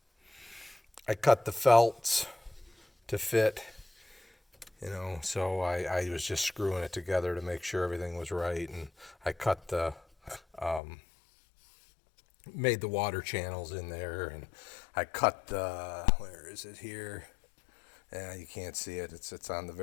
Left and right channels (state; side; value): drops out; right; at 10.8 s